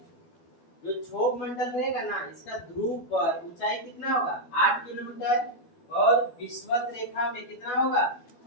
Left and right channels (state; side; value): late; right; 12 ms